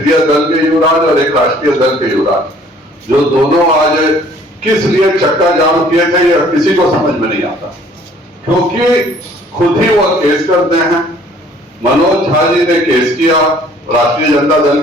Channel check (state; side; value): normal; both; correlation 0.56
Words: दल के युवराज और एक राष्ट्रीय दल के युवराज, जो दोनों आज किस लिए चक्का जाम किए थे यह किसी को समझ में नहीं आता, क्योंकि खुद ही वह केस करते हैं। मनोज झा जी ने केस किया, राष्ट्रीय जनता दल